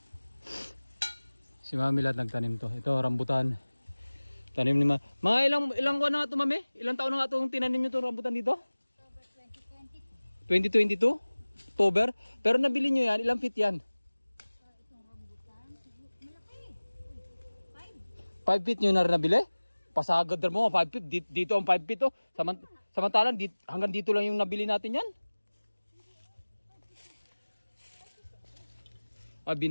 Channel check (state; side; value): inverted; both; correlation -1.00